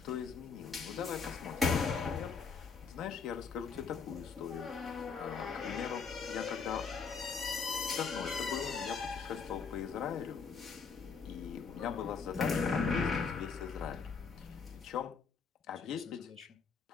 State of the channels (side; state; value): right; quieter; 5.6 dB